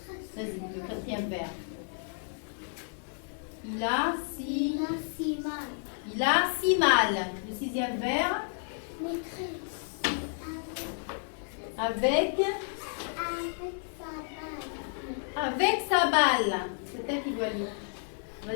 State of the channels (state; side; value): silent; right; 57 dB below the other